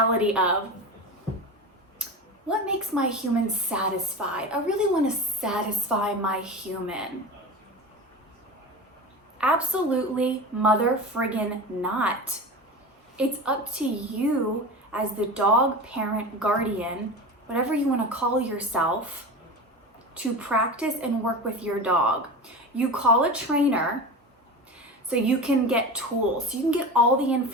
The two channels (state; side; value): normal; both; correlation 0.28